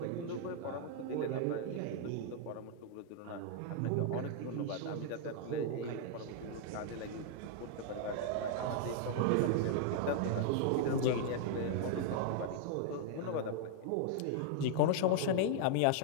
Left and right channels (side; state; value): both; different; correlation 0.00